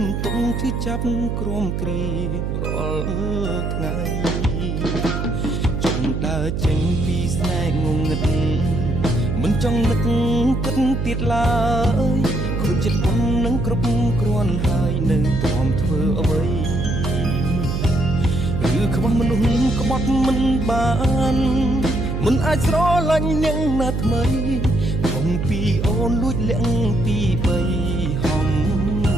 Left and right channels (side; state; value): right; noise; hum, 2 dB below the sound